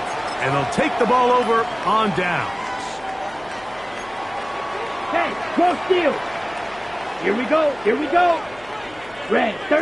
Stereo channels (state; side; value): noise; left; hum, 24 dB below the sound